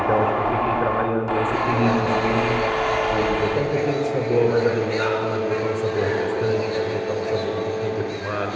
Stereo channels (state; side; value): identical; both; correlation 1.00